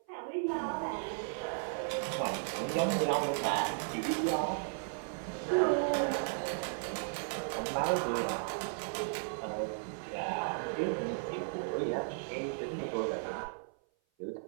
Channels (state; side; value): silent; left; 54 dB below the other